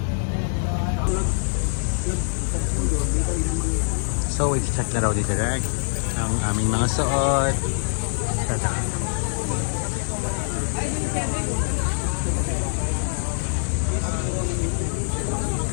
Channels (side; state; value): right; silent; 63 dB below the other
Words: So, i-check na raw dito direct ang aming mga suot. Tata.